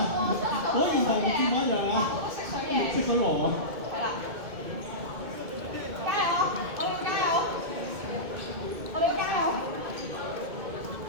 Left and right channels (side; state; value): left; late; 2.2 ms